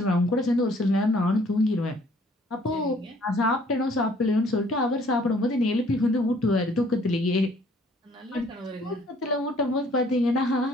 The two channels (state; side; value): normal; both; correlation 0.59